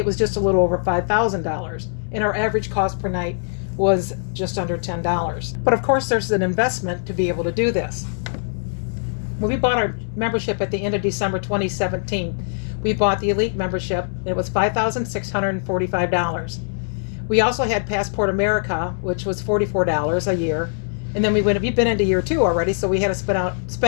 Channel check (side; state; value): right; silent; 64 dB below the other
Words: was just a little over $5,000, and our average cost per night was just under $10. But of course there's an investment to be able to do this. When we bought our membership at the end of December 2017, we bought the Elite membership, and it was $5,645. We also had Passport America, which was $44 a year, and then we've been into year 2 already, so we had to